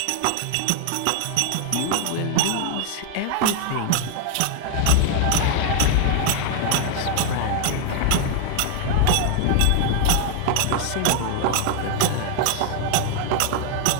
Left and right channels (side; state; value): both; different; correlation 0.00